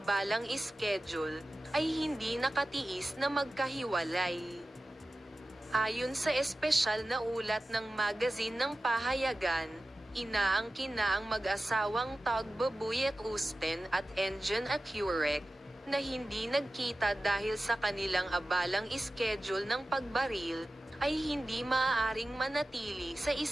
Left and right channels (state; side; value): normal; both; correlation 0.95